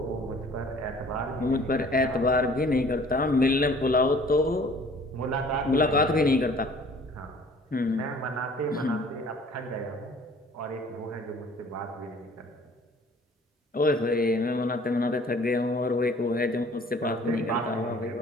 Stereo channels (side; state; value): both; normal; correlation 0.52